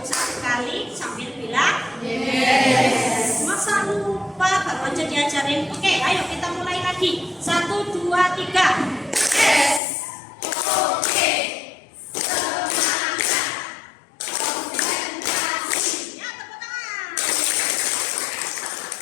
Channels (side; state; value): right; drops out; at 9.8 s